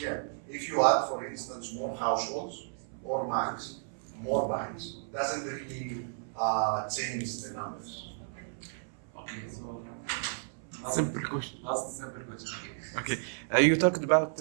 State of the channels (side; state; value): left; silent; 56 dB below the other